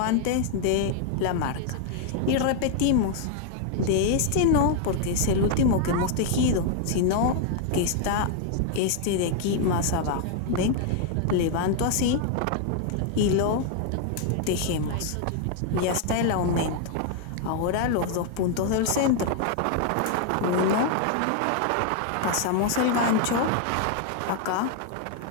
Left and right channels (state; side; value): different; both; correlation 0.00